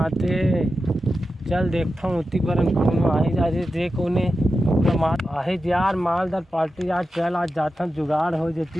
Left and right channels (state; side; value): normal; both; correlation 0.91